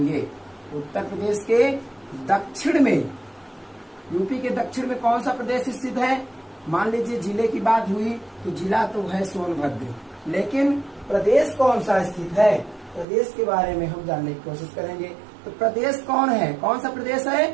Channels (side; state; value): left; drops out; at 13.1 s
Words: उत्तर प्रदेश के दक्षिण में, यूपी के दक्षिण में कौन सा प्रदेश स्थित है। मान लीजिए जिले की बात हुई तो जिला तो है सोनभद्र, लेकिन प्रदेश कौन सा स्थित है, प्रदेश के बारे में हम जानने की कोशिश करेंगे। तो प्रदेश कौन है, कौन सा प्रदेश